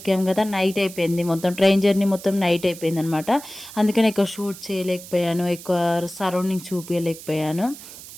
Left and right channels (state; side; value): noise; right; hiss, 15 dB below the sound